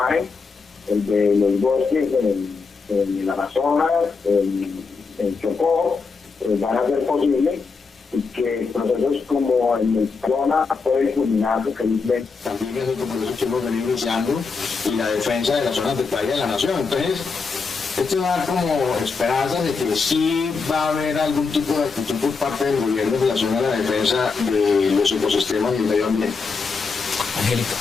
el de los bosques en el Amazonas, en Chocó, van a ser posibles, y que procesos como el de Zona pueden culminar felizmente. También es otro proceso que hemos venido iniciando y la defensa de las zonas de playa de la nación. Entonces, esto da como esperanzas de que sí va a haber algún tipo de actitud por parte del gobierno en relación a la defensa de los ecosistemas y el medio ambiente. Angélica,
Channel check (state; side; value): quieter; right; 4.7 dB